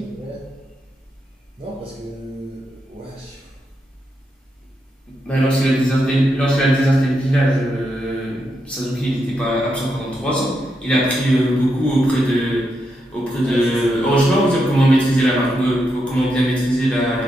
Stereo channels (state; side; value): normal; both; correlation 0.83